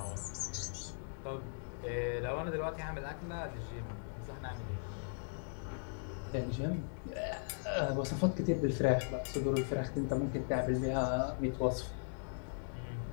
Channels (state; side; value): silent; right; digital silence